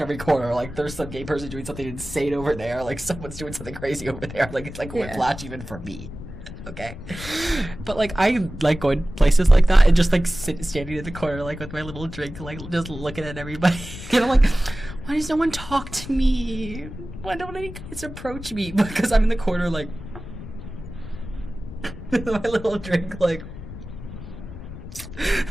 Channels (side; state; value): left; noise; rumble, 12 dB below the sound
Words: corner. Like there's some gay person doing something insane over there. Like someone's doing something crazy over there. Like it's like whiplash even for me. Okay, but like I like going places like that and just like standing in the corner like with my little drink, like just looking at everybody. And I'm like, why does no one talk to me? Why don't any guys approach me? Because I'm in the corner like with my little drink, like